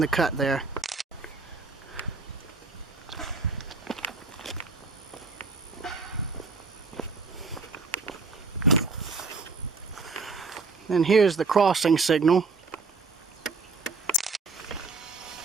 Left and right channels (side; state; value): left; quieter; 4.1 dB